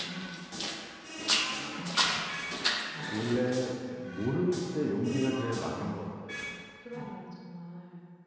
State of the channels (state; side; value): identical; both; correlation 1.00